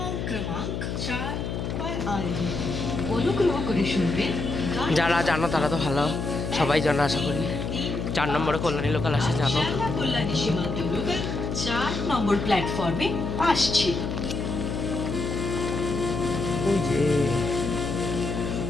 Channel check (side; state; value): left; noise; hum, 3 dB below the sound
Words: যারা জানো তারা তো ভালো, সবাই জানো আশা করি। 4 নম্বরে কল্যাণী লোকাল আসে, জানো। কল্যাণী সীমান্ত লোকাল 4 নম্বর প্ল্যাটফর্মে আসছে। ওই যে